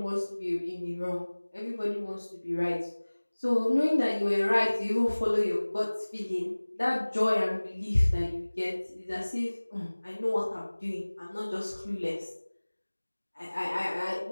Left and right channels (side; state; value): both; inverted; correlation -1.00